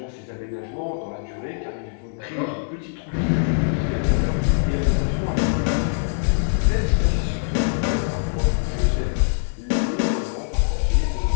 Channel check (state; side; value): silent; right; 64 dB below the other